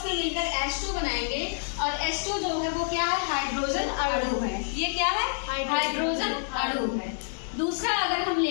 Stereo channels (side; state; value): right; silent; digital silence